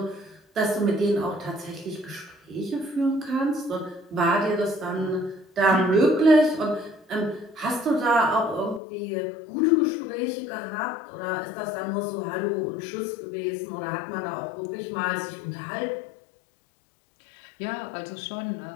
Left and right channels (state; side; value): drops out; right; at 8.8 s